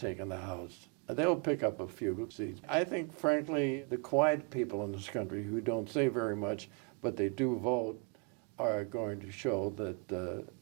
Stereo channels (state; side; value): quieter; left; 35.3 dB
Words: the House. They'll pick up a few seats. I think, frankly, the quiet people in this country who don't say very much, but they do vote, are going to show that